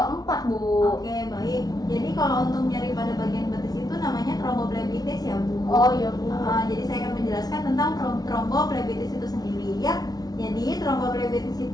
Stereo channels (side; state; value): right; late; 0.19 ms